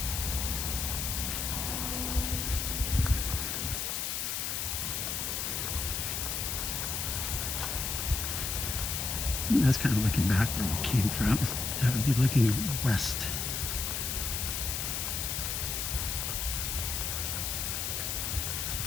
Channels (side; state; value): left; noise; hiss, 1 dB below the sound